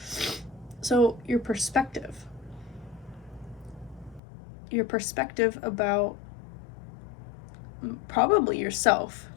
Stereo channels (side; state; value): right; drops out; at 4.2 s